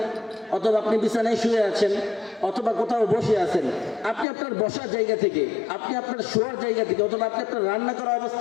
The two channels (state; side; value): drops out; right; at 4.2 s